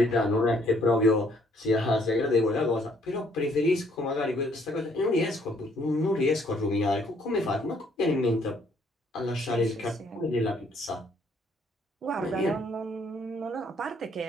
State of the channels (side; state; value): both; normal; correlation 0.66